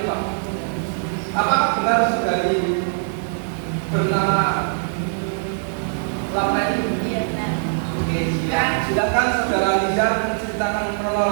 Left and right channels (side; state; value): left; silent; digital silence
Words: Pak. Apakah benar saudari bernama Lapeni? Iya, benar. Oke, silakan saudara Nizar menceritakan